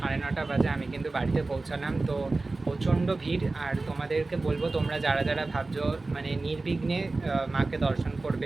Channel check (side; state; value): left; quieter; 3.4 dB